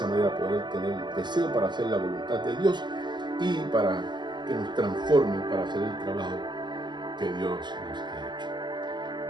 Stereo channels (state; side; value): late; left; 0.21 ms